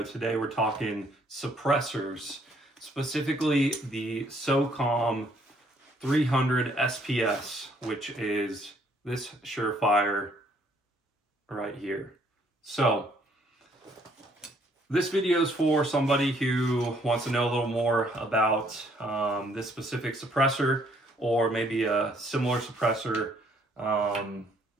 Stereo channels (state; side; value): normal; both; correlation 0.65